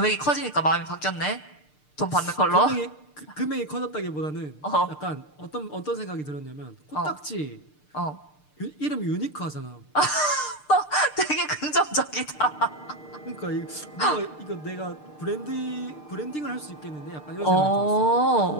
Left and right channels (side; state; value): right; late; 6.7 ms